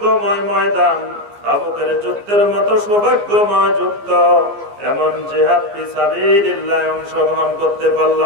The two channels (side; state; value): left; late; 15 ms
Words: ময়দান, তাবুকের যুদ্ধের মতো সৌভাগ্যময় যুদ্ধ, এমন জিহাদ ফি সাবিলিল্লাহ অংশগ্রহণ করতে